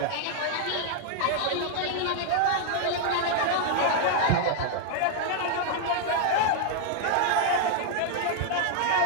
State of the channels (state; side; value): different; both; correlation 0.00